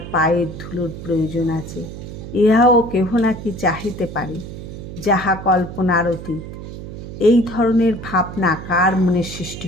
পায়ের ধুলোর প্রয়োজন আছে, ইহাও কেহ নাকি চাহিতে পারে, যাহা কল্পনার অতীত। এই ধরনের ভাবনা কার মনে সৃষ্টি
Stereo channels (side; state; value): right; noise; hum, 11 dB below the sound